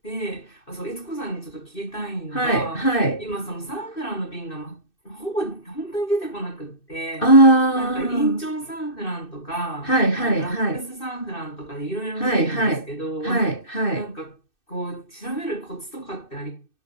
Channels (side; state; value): right; late; 2.6 ms